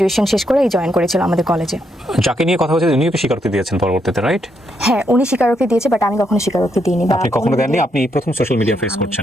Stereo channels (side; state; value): both; normal; correlation 0.78